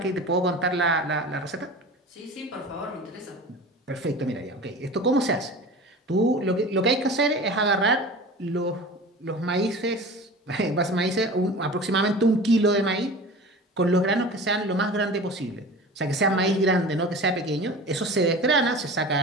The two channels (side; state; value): both; normal; correlation 0.36